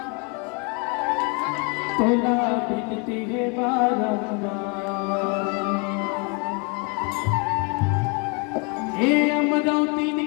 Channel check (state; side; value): quieter; right; 33.3 dB